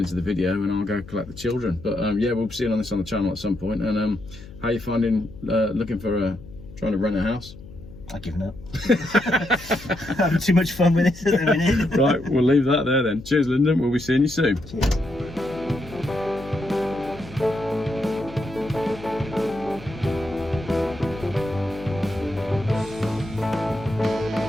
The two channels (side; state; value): left; noise; hum, 17 dB below the sound